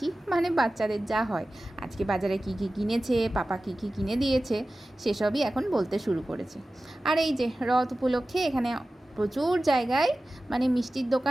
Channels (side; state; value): both; normal; correlation 0.95